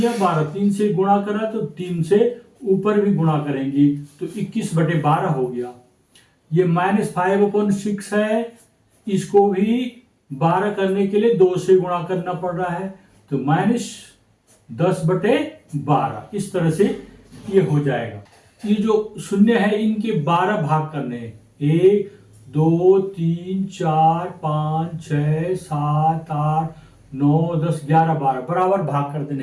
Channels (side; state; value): both; identical; correlation 1.00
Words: 12, 3 से गुणा करा तो 3 से ऊपर भी गुणा करेंगे तो 21/12 हो गया। ये -5/6 है, इसको भी 12 करने के लिए 2 से गुणा करना पड़ रहा है, तो -10/12 इस तरह से ये हो जाएगा। ये जो शून्य है इनके 12 भाग करने हैं। 1 2 3 4 5 6 7 8 9 10 11 12 बराबर भाग कर